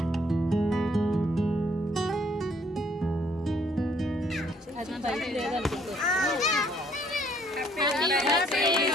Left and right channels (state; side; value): normal; both; correlation 0.65